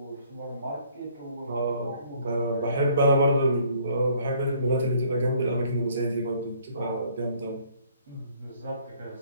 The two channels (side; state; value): both; inverted; correlation -0.61